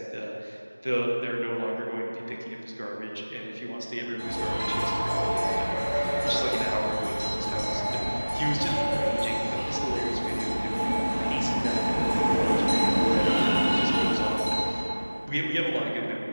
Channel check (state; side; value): inverted; both; correlation -1.00